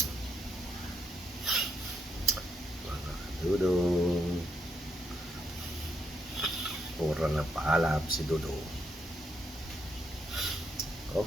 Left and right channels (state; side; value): normal; both; correlation 0.78